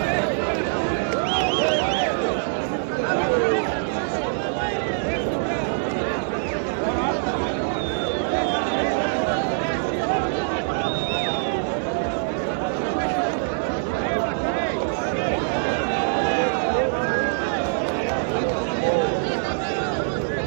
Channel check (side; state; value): left; silent; 63 dB below the other